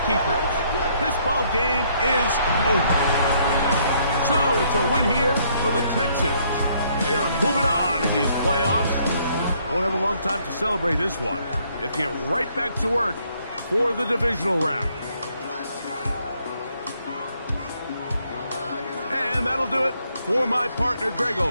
keepers. This ball game is over. So it's a win here for the Texans. They are moving on in these playoffs. Won't have a long time to celebrate this one. They have to get right back to work for the divisional round. And that'll do it for my partner, Greg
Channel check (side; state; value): both; inverted; correlation -0.68